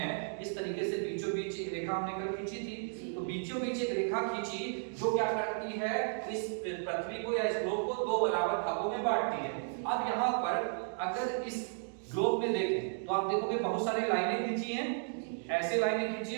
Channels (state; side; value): silent; left; digital silence